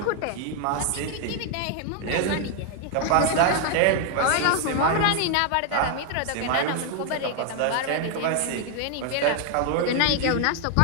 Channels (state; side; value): different; both; correlation 0.00